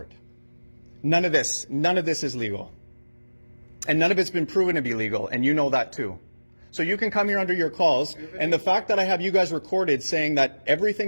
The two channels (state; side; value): inverted; both; correlation -1.00